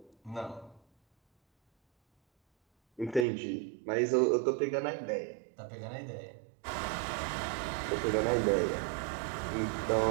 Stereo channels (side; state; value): left; drops out; at 3.2 s